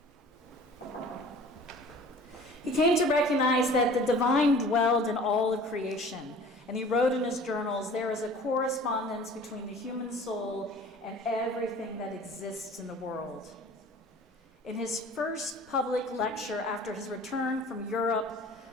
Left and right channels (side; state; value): both; normal; correlation 0.46